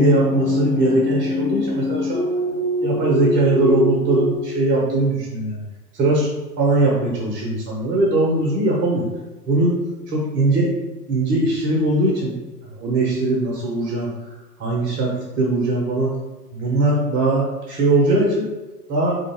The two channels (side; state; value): both; normal; correlation 0.28